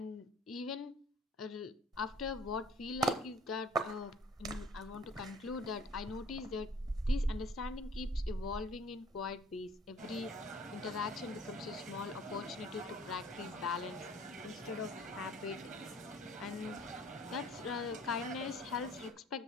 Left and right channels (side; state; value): both; normal; correlation 0.53